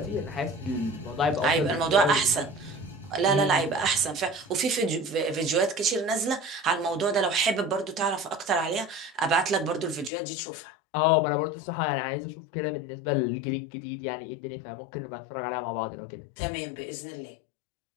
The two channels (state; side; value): drops out; right; at 10.1 s